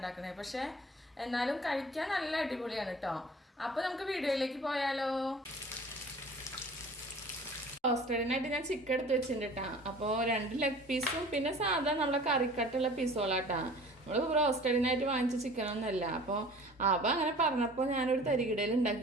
പക്ഷേ എന്നാലും കഴിക്കാൻ നല്ല അടിപൊളിയാണ് കേട്ടോ. അപ്പോൾ നമുക്ക് വീഡിയോയിലേക്ക് പോയാലോ. റോസ്റ്റഡിനായിട്ട് ഞാൻ ചിക്കൻ എടുത്ത് വെച്ചിട്ടുണ്ട് കേട്ടാ. അപ്പോൾ 2 ലെഗ് പീസും പിന്നെ സാധാ നമ്മളെ കറിക്കട്ടുള്ള പീസോളാട്ടാ. നമ്മൾ റോസ്റ്റഡിനായിട്ട് വാങ്ങിച്ച ചിക്കനൊന്നുമല്ല. അപ്പോൾ അങ്ങനെ പറഞ്ഞപ്പോൾ ഞാനൊരു തരികിടയിൽ ഉണ്ടാക്കി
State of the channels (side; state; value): both; normal; correlation 0.45